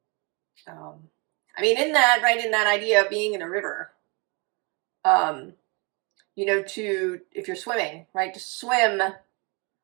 In that idea of being in a river, if you're swimming, right, to swim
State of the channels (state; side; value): quieter; left; 30.6 dB